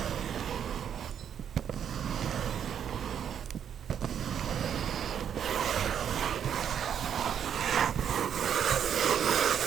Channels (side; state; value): left; quieter; 8.7 dB